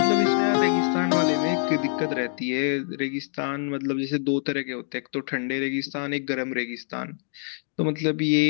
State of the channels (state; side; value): silent; right; 62 dB below the other